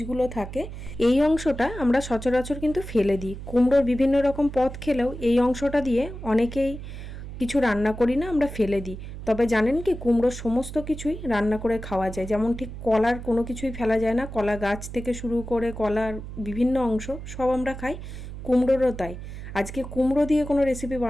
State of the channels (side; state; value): right; noise; hum, 10 dB below the sound